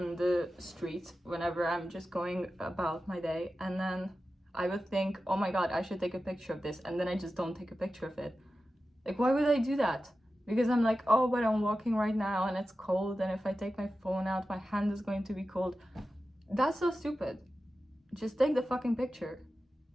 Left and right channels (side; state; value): both; normal; correlation 0.93